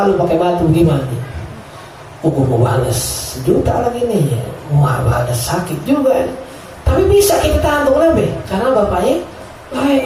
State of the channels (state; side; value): identical; both; correlation 1.00